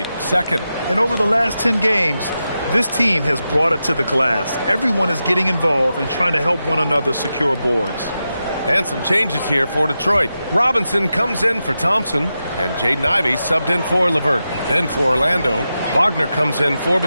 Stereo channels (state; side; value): inverted; both; correlation -0.90